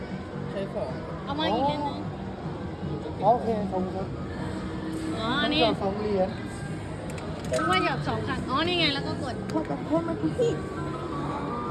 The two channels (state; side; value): identical; both; correlation 1.00